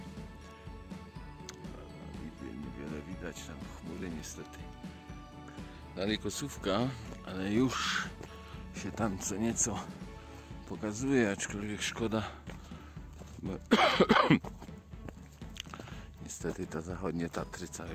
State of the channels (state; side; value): identical; both; correlation 1.00